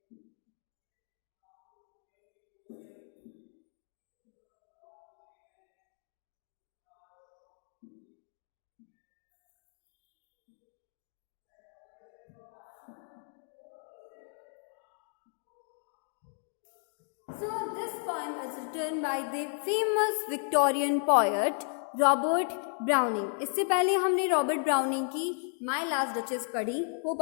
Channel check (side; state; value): right; silent; 55 dB below the other